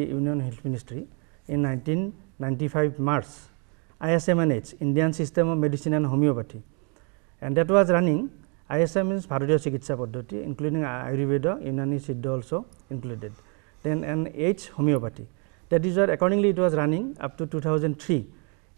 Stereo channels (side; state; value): left; quieter; 36.1 dB